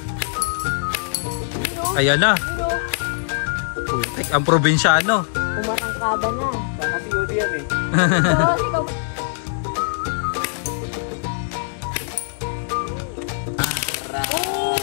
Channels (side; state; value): right; silent; digital silence